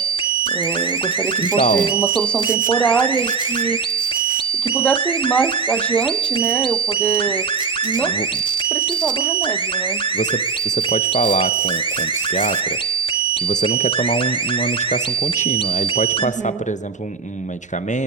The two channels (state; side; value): quieter; left; 5.3 dB